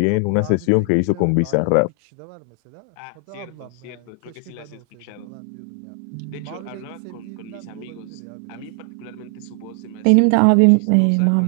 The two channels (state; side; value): different; both; correlation 0.00